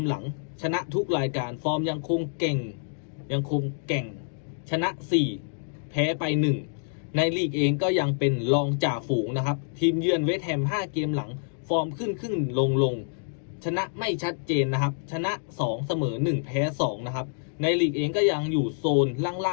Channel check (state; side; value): silent; right; digital silence